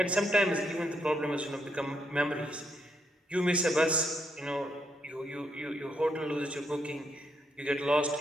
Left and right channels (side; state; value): both; normal; correlation 0.77